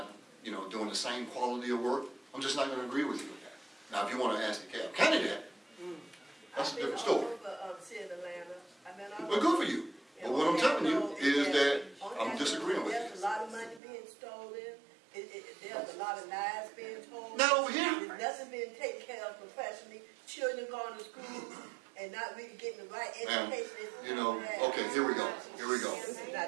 doing the same quality of work. I'm just not going to agree with you with that. Now, if you want to ask DeKalb County that, that's a different story. Well, good for you. But what I'm telling you is that I'm disagreeing with you. There's a lot of money being stolen. There's a lot of lies being told. Not over here. There's nothing being taken care of professionally. Children going to school and not really getting the right education. Okay, here we go. Here we go.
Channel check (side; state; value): left; drops out; at 13.8 s